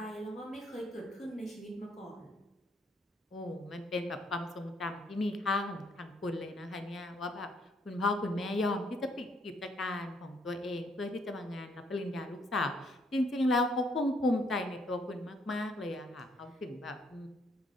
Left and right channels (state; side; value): normal; both; correlation 0.69